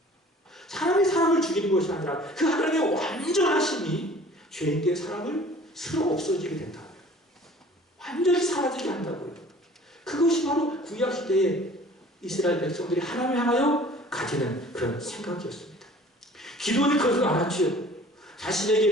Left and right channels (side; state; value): both; normal; correlation 0.49